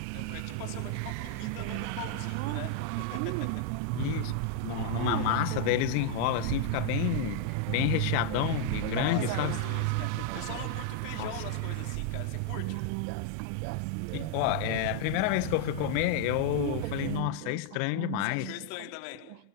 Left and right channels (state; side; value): different; both; correlation 0.00